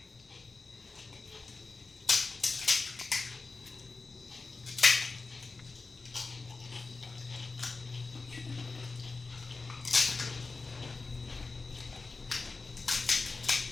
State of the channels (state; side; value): quieter; right; 3.9 dB